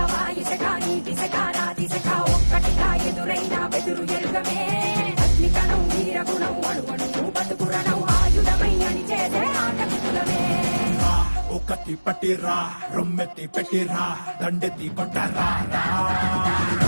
వాయుసెక నీటిసెక రాతిసెక ఒక్కటిగా ఎదురైన బెదురు ఎరుగమే అగ్నికణం వీరగుణం అణువణువు బతుకురణం ఆయుధమై అని చేసే ఆటవికులమే ఒకటి పట్టిరా రొమ్మెత్తి పెట్టిరా దండెత్తి కొట్టరా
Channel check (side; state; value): both; inverted; correlation -1.00